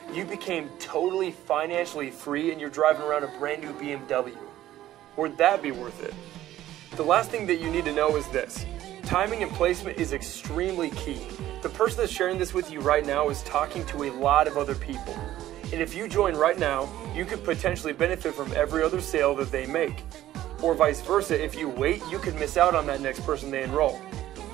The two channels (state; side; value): quieter; left; 13.6 dB